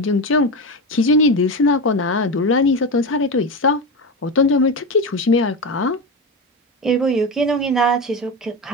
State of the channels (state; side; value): normal; both; correlation 0.19